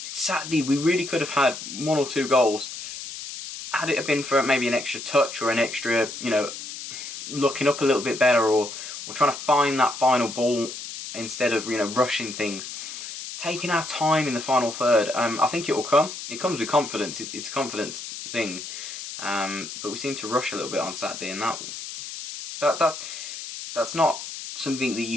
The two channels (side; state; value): left; noise; hiss, 9 dB below the sound